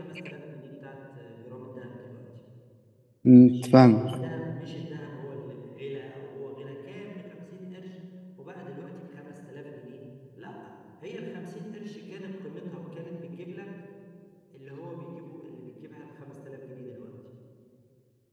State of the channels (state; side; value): identical; both; correlation 1.00